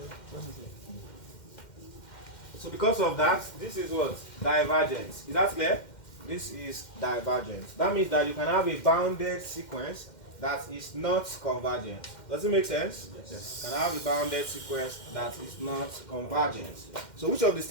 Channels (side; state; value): right; late; 2.1 ms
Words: So because of that, this is what? Divergence. Is that clear? This is divergence. That means that you can have a bounded sequence that is not convergent. Does it make sense? Yes. You can have a bounded sequence that is not convergent. So which of the